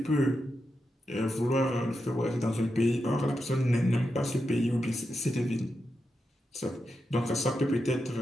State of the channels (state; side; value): normal; both; correlation 0.87